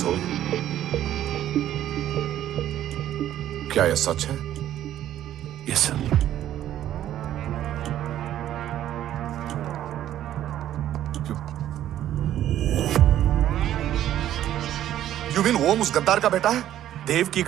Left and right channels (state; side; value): quieter; left; 12.0 dB